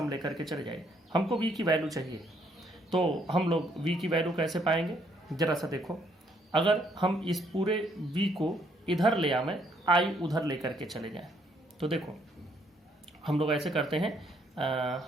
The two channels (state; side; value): normal; both; correlation 0.68